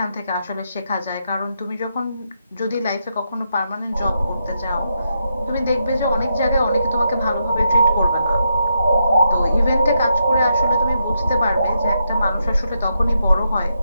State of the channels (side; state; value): both; inverted; correlation -0.81